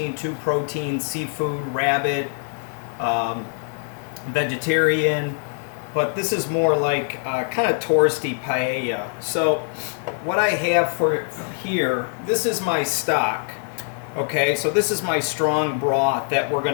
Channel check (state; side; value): silent; right; 60 dB below the other